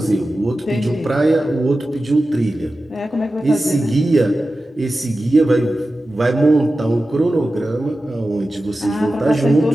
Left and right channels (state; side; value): normal; both; correlation 0.94